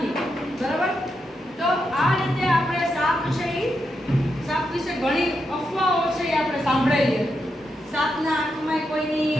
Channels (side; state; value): both; normal; correlation 0.84